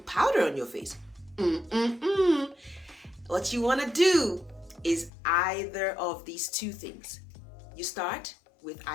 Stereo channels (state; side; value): drops out; right; at 5.1 s